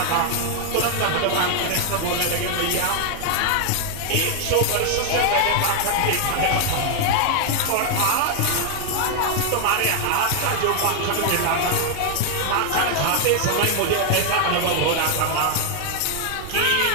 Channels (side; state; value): both; different; correlation 0.00